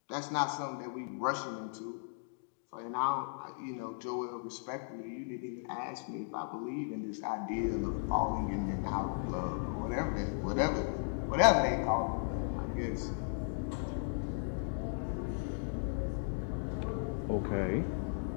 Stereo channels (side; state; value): right; silent; digital silence